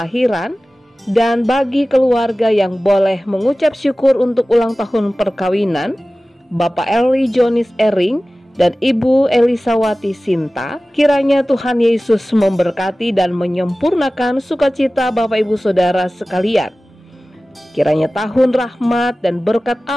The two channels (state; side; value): normal; both; correlation 0.97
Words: dan bagi keluarga yang boleh mengucap syukur untuk ulang tahun perkawinan, Bapak Eli Jonis Ering dan Ibu Elisawati Sinta. Kiranya Tuhan Yesus memberkati dan menyempurnakan sukacita Bapak Ibu Saudara sekalian. Kiranya tahun rahmat dan berkat